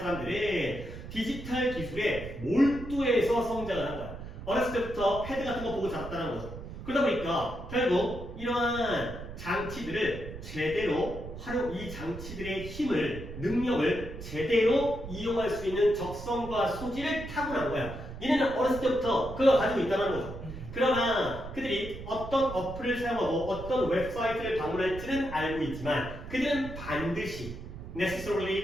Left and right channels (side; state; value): right; noise; rumble, 11 dB below the sound